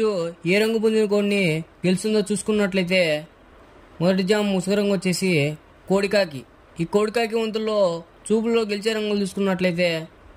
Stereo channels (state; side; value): identical; both; correlation 1.00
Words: పుంజుని కొన్ని గెలుస్తుందో చూసుకున్నట్లయితే మొదటి జామ్ ముసుగు రంగు వచ్చేసి కోడికాకి. ఈ కోడికాకి వంతుల్లో చూపుల్లో గెలిచే రంగులు చూసుకున్నట్లయితే